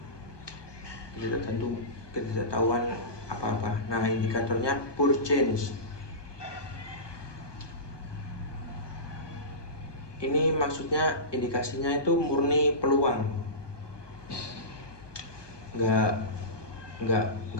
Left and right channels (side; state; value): right; late; 1.2 ms